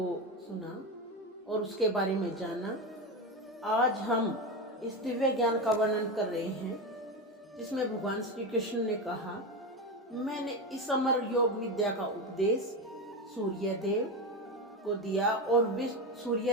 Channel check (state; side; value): normal; both; correlation 0.17